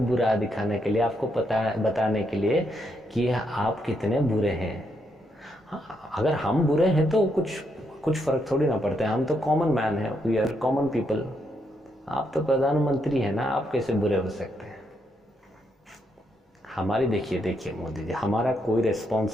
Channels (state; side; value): normal; both; correlation 0.78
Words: दिखाने के लिए, आपको बताने के लिए कि आप कितने बुरे हैं। हाँ, अगर हम बुरे हैं तो कुछ फर्क थोड़ी ना पड़ता है, हम तो कॉमन मैन है, वी आर कॉमन पीपल। आप तो प्रधानमंत्री है ना, आप कैसे बुरे हो सकते हैं? हमारी देखिए मोदी जी, हमारा कोई